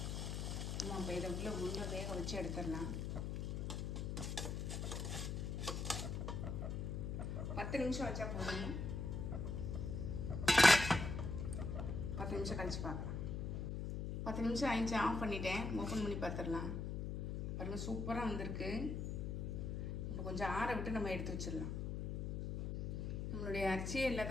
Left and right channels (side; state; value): left; noise; hum, 2 dB below the sound